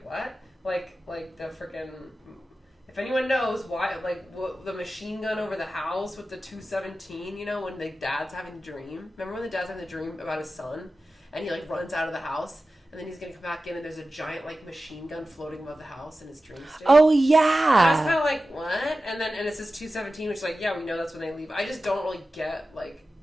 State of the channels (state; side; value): normal; both; correlation 0.94